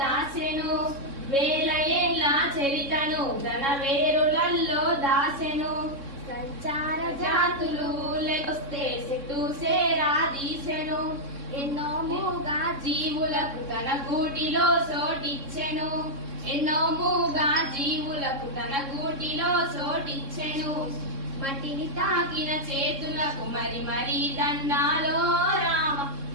దాసెను, వేల ఏళ్ళ చరితను తన వేరులలో దాసెను, సంచార జాతులు లెకొస్తే చెట్టు సేరా దీసెను, ఎన్నో మూగా జీవులకు తన గూటిలో చోటిచ్చెను, ఎన్నో మూగా జీవులకు తన గూటిలో చోటిచ్చెను, మట్టిని తాకిన చేతులకు మరి మరి దండాలో రామ,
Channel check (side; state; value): left; late; 3.6 ms